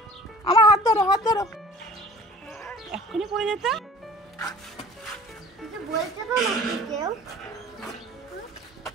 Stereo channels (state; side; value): normal; both; correlation 0.45